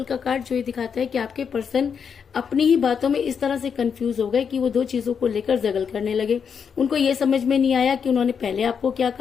का कार्ड जो ये दिखाता है कि आपके पर्सन अपनी ही बातों में इस तरह से कंफ्यूज हो गए कि वो दो चीजों को लेकर जगल करने लगे। उनको ये समझ में नहीं आया कि उन्होंने पहले आपको क्या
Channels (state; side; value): quieter; right; 6.8 dB